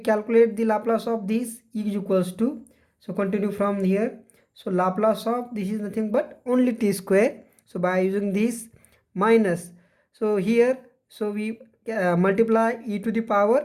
the Laplace of this is equals to, so continue from here, so Laplace of this is nothing but only t square, so by using this minus, so here so we multiply e to the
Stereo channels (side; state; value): both; identical; correlation 1.00